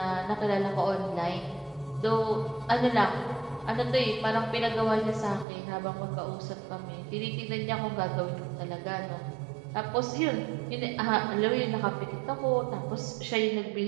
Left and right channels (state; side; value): drops out; left; at 5.5 s